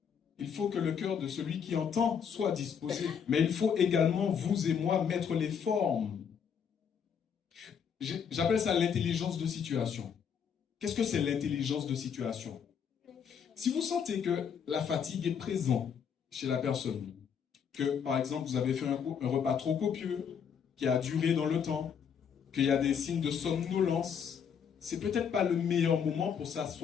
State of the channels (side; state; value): right; quieter; 7.3 dB